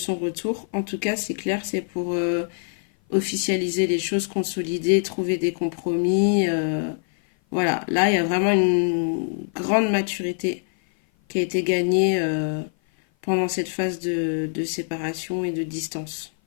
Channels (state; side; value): silent; right; 56 dB below the other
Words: retour, en tout cas, c'est clair, c'est pour officialiser les choses, consolider, trouver des compromis. Voilà, là, il y a vraiment une grande maturité qui a été gagnée pendant cette phase de séparation et de distance,